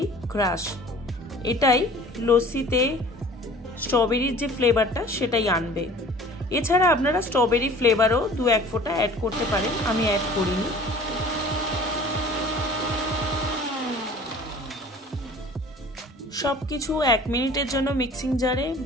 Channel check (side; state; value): both; normal; correlation 0.46